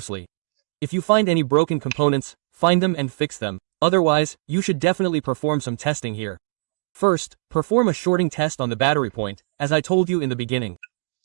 If you find any broken components, find them and fix them. Otherwise, you should definitely perform some testing here. First, perform a shorting test on the battery point, as I told you in the beginning.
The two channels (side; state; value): left; silent; digital silence